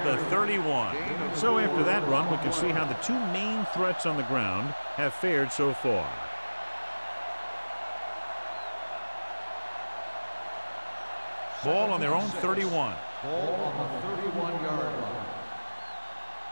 the 31. So after that run, we can see how the two main threats on the ground have fared so far. Ball on their own 31. Ball on the 31-yard line.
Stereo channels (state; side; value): inverted; both; correlation -1.00